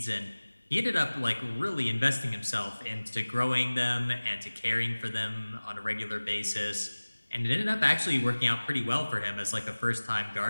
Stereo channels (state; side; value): inverted; both; correlation -1.00